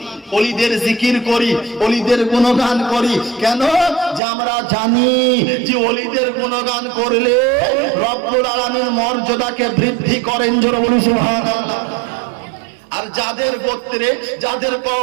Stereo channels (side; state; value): left; drops out; at 4.2 s